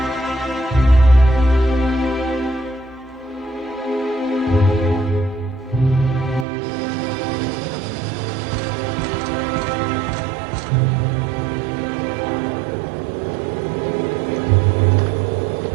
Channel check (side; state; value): left; drops out; at 6.5 s